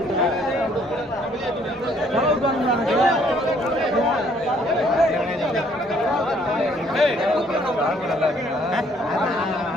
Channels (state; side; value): normal; both; correlation 0.64